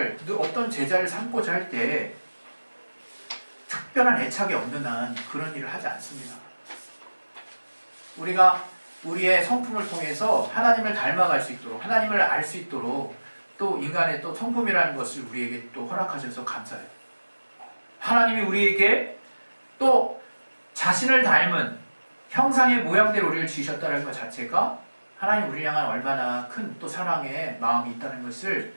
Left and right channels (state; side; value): inverted; both; correlation -1.00